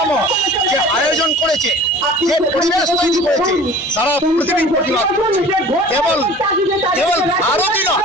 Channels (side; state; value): both; normal; correlation 0.44